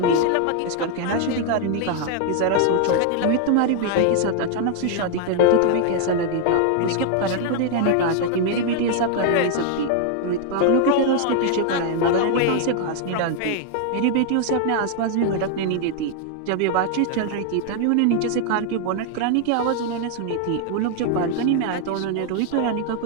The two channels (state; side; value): different; both; correlation 0.00